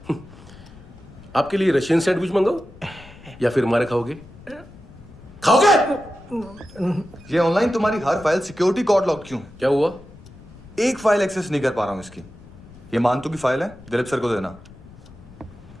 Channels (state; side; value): noise; left; rumble, 20 dB below the sound